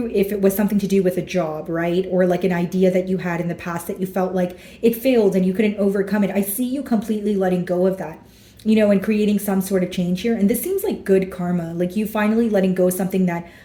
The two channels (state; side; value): identical; both; correlation 1.00